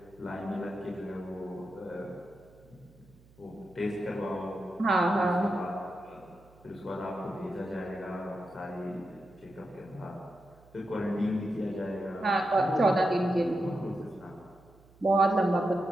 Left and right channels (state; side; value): noise; right; hum, 27 dB below the sound